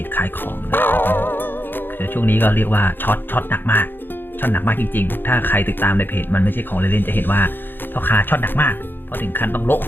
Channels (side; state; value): right; late; 0.098 ms